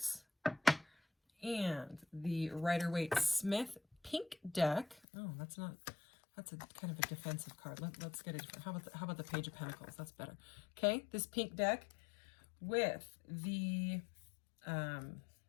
and the Rider-Waite Smith pink deck. Oh, that's a kind of a defensive card. Let's get it. How about the Page of Pentacles? That's better. Okay, this pink deck with the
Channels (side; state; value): right; drops out; at 5.0 s